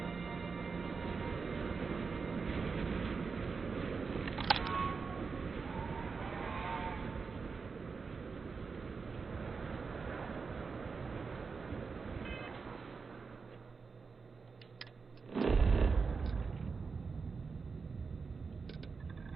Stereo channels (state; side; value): quieter; left; 4.9 dB